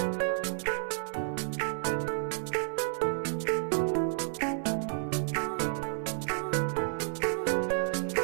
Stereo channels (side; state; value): left; silent; 57 dB below the other